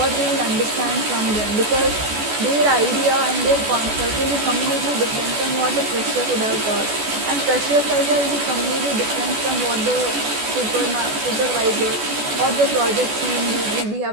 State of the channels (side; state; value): left; late; 14 ms